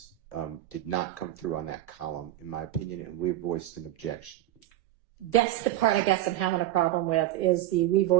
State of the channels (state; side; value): quieter; left; 14.2 dB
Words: did not come through on that column, in my opinion, and we voiced an objection. That's the part I guess I'm having a problem with, is the we